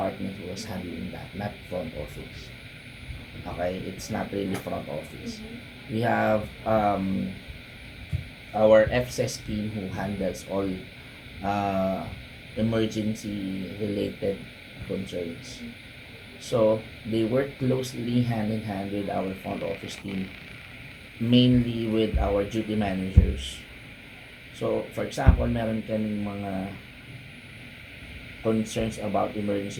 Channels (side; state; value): both; identical; correlation 1.00